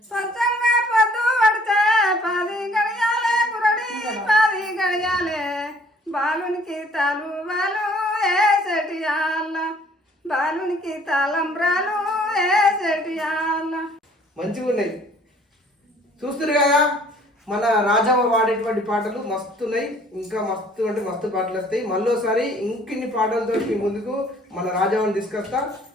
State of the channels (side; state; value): both; normal; correlation 0.57